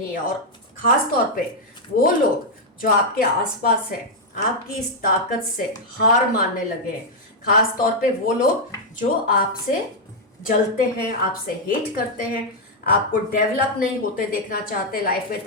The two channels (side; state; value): both; normal; correlation -0.01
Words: है। और ख़ास तौर पे वो लोग जो आपके आसपास है, आपकी इस ताकत से हार मानने लगे हैं। खास तौर पे वो लोग जो आपसे जलते हैं, आपसे हेट करते हैं, आपको डेवलप नहीं होते देखना चाहते, लाइफ में